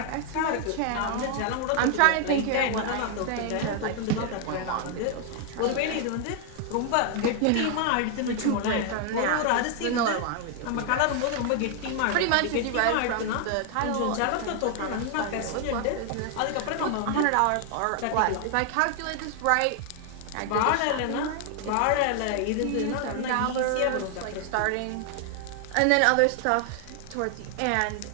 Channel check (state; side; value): different; both; correlation 0.00